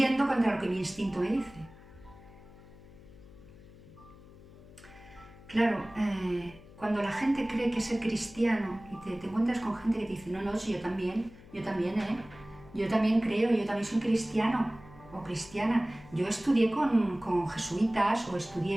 contra lo que mi instinto me dice. Claro, cuando la gente cree que ser cristiano y te encuentras con gente que te dice, no, yo también creo, yo también soy cristiano o cristiana. Yo estudié con jesuitas o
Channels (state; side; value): noise; left; hum, 20 dB below the sound